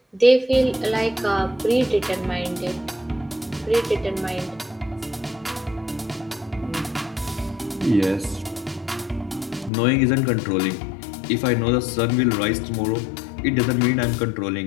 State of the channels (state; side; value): drops out; right; at 9.7 s